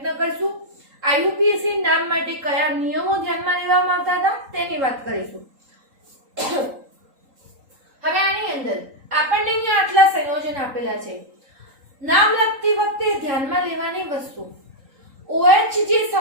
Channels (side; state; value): left; late; 3.8 ms